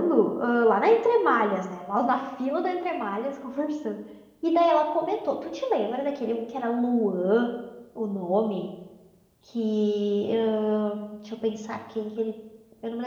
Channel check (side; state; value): both; identical; correlation 1.00